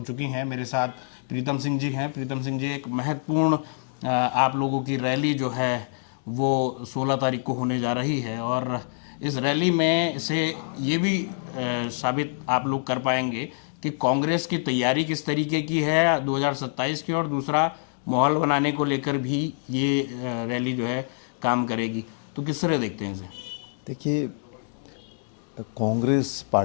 चुकी हैं। मेरे साथ प्रीतम सिंह जी हैं। प्रीतम सिंह जी, एक महत्वपूर्ण आप लोगों की रैली जो है वो 16 तारीख को होने जा रही है, और इस रैली में से ये भी साबित आप लोग कर पाएंगे कि कांग्रेस की तैयारी किस तरीके की है 2027 की, और दूसरा माहौल बनाने को लेकर भी ये रैली जो है काम करेगी। तो किस तरह देखते हैं इसे? देखिए, कांग्रेस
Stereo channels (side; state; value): right; silent; digital silence